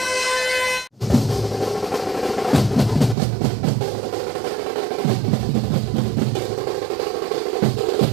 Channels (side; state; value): left; drops out; at 3.2 s